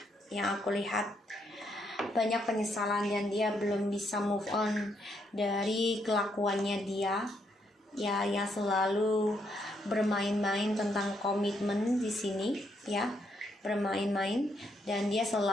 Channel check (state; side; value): normal; both; correlation 0.75